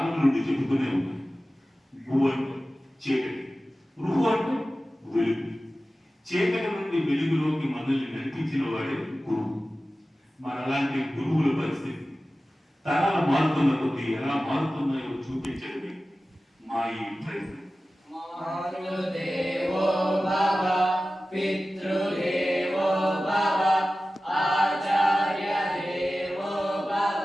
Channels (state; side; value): normal; both; correlation 0.95